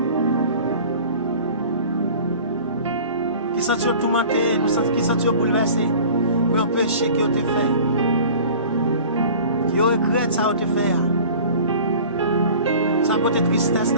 qui sentit tourmenté, qui sentit bouleversé pour un péché qui a été fait. Yo regrette ça te faire. Ça peut être tristesse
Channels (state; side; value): inverted; both; correlation -0.43